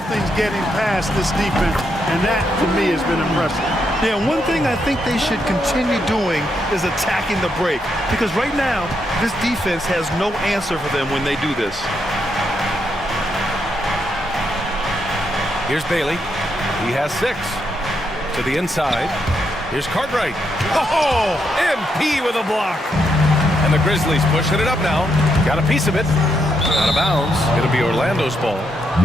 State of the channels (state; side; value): normal; both; correlation 0.79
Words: getting past this defense, and that, to me, has been impressive. Yeah, one thing I think they should continue doing is attacking the break. Because right now, this defense has no answer for them when they do this. Here's Bailey. He has 6. To the inside. Here's Cartwright. Oh, MP with a block. And the Grizzlies pushing it up now. Got a piece of it. Out of bounds. It'll be Orlando's ball.